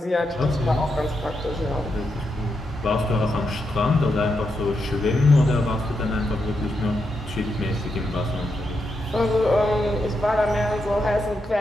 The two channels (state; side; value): normal; both; correlation 0.84